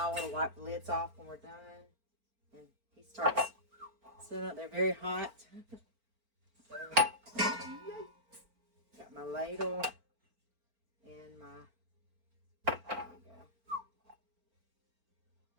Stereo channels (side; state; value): left; late; 4.4 ms